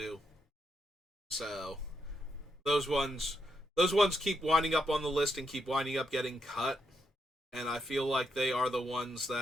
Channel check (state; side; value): normal; both; correlation 0.80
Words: So those ones those ones keep winding up on the list and keep winding up getting cut, and I feel like they are the ones